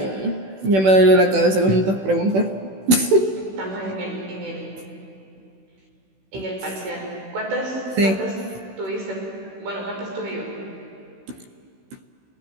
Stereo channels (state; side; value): late; left; 16 ms